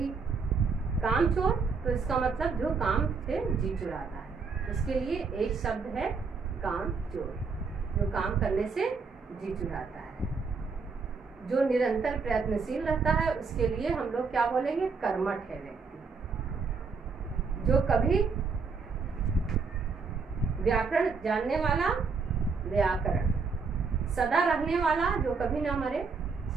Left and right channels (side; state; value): left; quieter; 4.9 dB